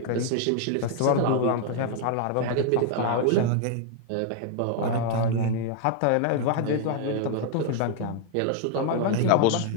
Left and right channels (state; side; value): different; both; correlation 0.00